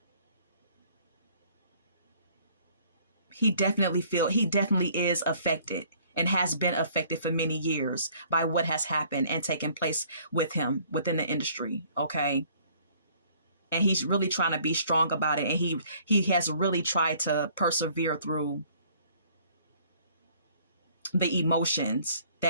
he definitely is affected and has been affected for many years by what has happened and taken place with him within the industry. Okay. And he's really trying to be strong about it. And he has really tried to persevere through the emotions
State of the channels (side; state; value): both; inverted; correlation -0.58